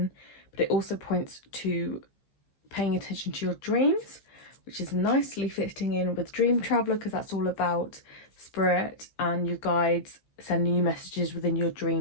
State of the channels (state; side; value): late; right; 15 ms